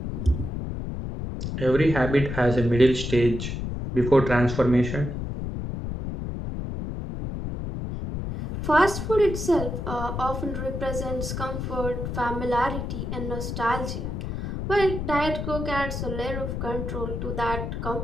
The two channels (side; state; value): left; noise; rumble, 4 dB below the sound